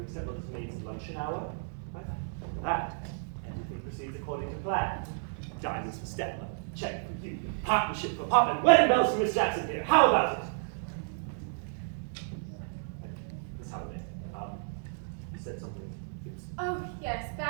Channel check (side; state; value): left; silent; digital silence